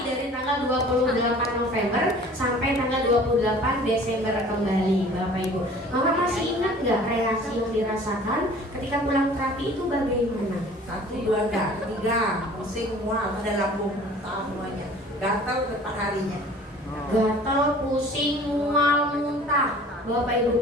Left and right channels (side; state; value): both; normal; correlation 0.48